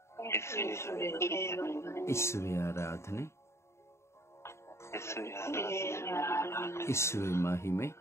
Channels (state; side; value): late; right; 0.13 ms